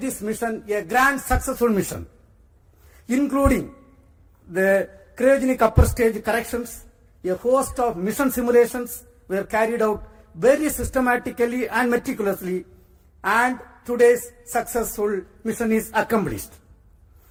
mission a grand successful mission, including the cryogenic upper stage corrections. A host of mission simulations were carried out very systematically and meticulously, and today's successful mission is accomplished.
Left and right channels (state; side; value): identical; both; correlation 1.00